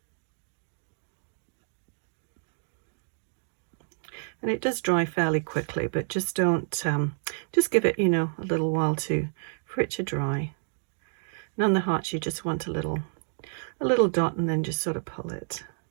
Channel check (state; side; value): silent; left; digital silence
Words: And it does dry fairly quickly, but just don't, just give it, you know, a little while for it to dry. And on the hearts, you just want a little dot and then just sort of pull it.